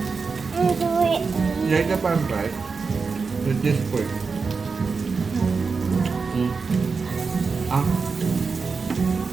Kaya parang fried. With this pork. Ah,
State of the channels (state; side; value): quieter; left; 4.8 dB